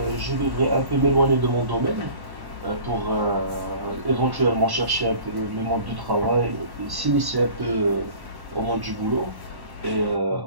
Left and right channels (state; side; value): late; left; 1.1 ms